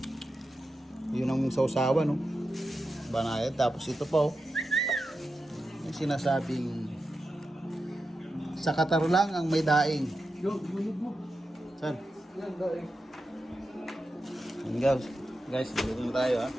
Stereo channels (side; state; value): both; normal; correlation 0.90